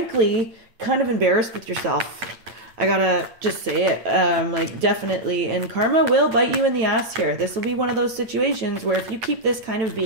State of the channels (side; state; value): left; late; 9.1 ms